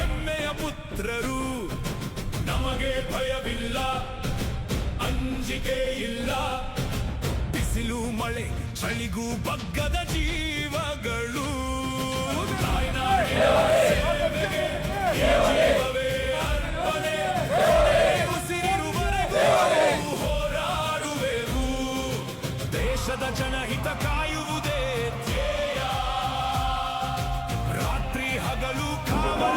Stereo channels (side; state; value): both; identical; correlation 1.00